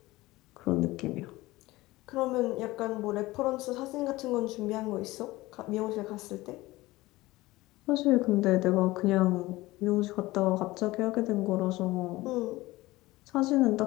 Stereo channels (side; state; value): right; quieter; 19.2 dB